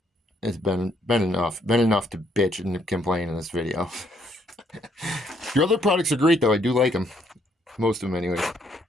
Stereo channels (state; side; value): normal; both; correlation 0.70